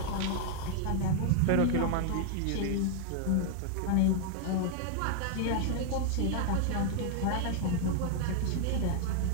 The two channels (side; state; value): both; different; correlation 0.00